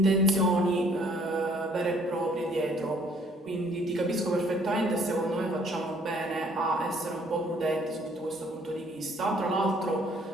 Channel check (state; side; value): normal; both; correlation 0.61